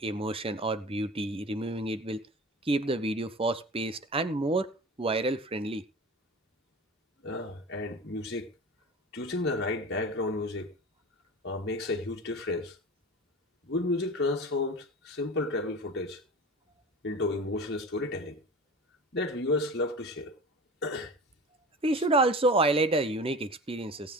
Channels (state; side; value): normal; both; correlation 0.35